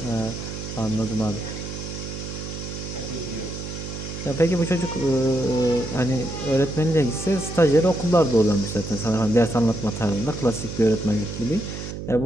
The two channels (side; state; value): right; noise; hum, 8 dB below the sound